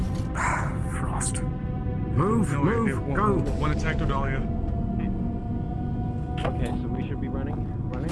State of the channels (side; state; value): both; identical; correlation 1.00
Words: Frost. Move, go. One attack to Dahlia. Okay, so we should be running.